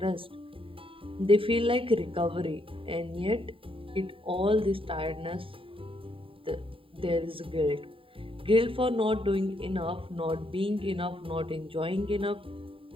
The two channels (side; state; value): left; late; 0.26 ms